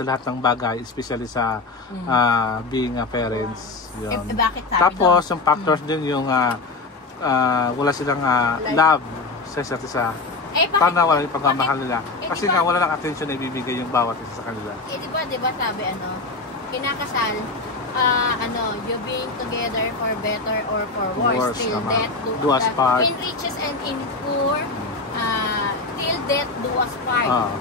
lahat ng bagay, especially sa being parents. Yun. Bakit sabi Tapos yung factors din yung wala silang love sa isa't isa. Paano wala yung pagmamahal nila? Kasi nga wala lang attention na ibibigay yung bawat isa sa kanila. Di ba sabi kinakasal, you being together for better or for worse, till death do us part. In riches and in poor, till death do us part.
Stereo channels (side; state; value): right; quieter; 3.7 dB